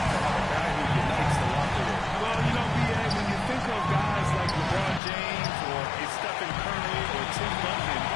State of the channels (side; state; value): right; drops out; at 5.0 s